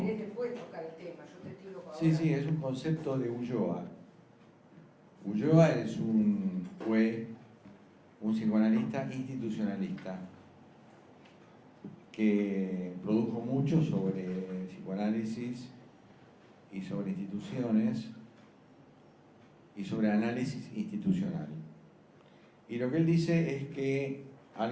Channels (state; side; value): identical; both; correlation 1.00